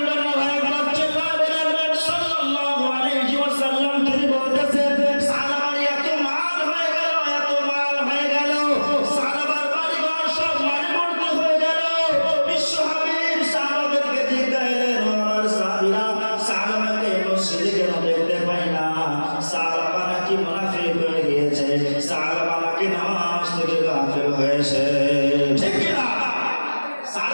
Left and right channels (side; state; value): both; inverted; correlation -1.00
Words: না ভাই, চিল্লায় বলেন সাল্লাল্লাহু আলাইহি ওয়াসাল্লাম। তিনি বলতেছেন সাহাবার এত মাল হয়ে গেল, এত মাল হয়ে গেল, সাহাবার বাড়িঘর সব মালে ভর্তি হয়ে গেল। বিশ্ব হাবিব সাহাবাদেরকে জিজ্ঞাসা করলেন, আমার সাহাবীরা সাহাবাকে মসজিদে কেন দেখতে পাই না? সাহাবা নাকি মুনাফিক হয়ে গিয়েছে, সাহাবা নাকি নামাজ থেকে গাফিল হয়েছে। ঠিক কি না?